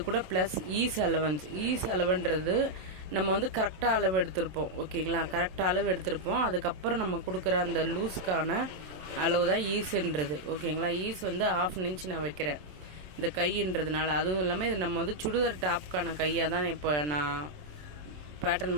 கூட ப்ளஸ் ஈஸ் அலவன்றது நம்ம வந்து கரெக்டாக அளவு எடுத்திருப்போம், ஓகேங்களா. கரெக்டாக அளவு எடுத்திருப்போம். அதுக்கப்புறம் நம்ம கொடுக்குற அந்த லூஸ்க்கான அளவு தான் ஈஸுன்றது, ஓகேங்களா. ஈஸ் வந்து 1/2 இன்ச் நான் வைக்கிறேன் இந்த கைன்றதுனால. அதுவும் இல்லாமல் இது நம்ம வந்து சுடிதார் டாப்புக்கான கையாக தான் இப்போ நான்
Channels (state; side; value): late; left; 27 ms